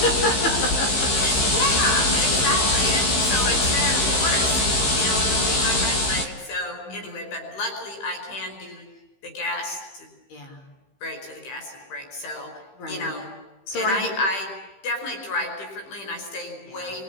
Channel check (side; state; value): right; late; 15 ms